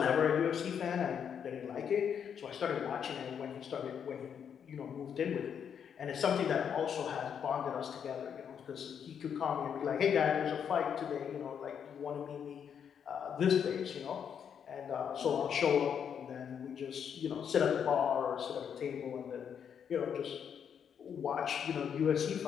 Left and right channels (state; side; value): quieter; right; 7.9 dB